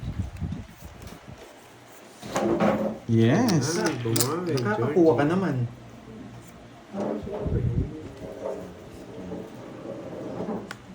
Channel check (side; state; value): both; identical; correlation 1.00